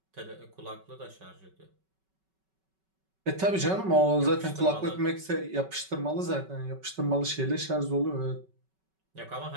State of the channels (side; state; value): left; late; 5.3 ms